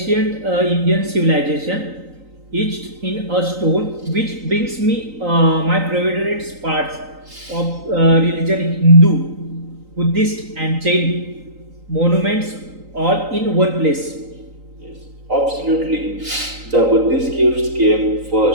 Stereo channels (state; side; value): late; left; 3.9 ms